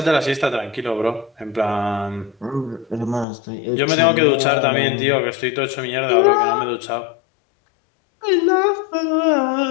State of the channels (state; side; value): drops out; right; at 3.2 s